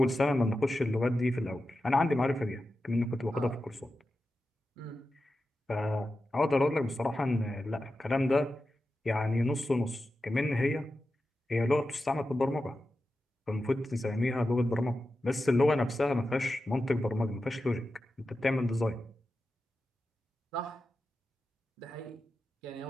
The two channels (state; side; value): normal; both; correlation 0.91